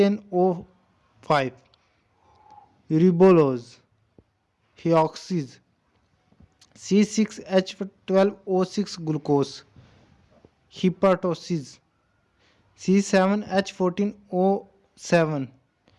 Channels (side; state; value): both; identical; correlation 1.00